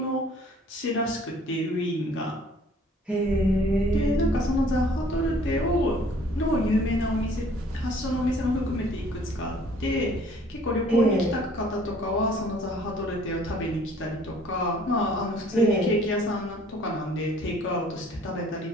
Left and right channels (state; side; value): normal; both; correlation 0.55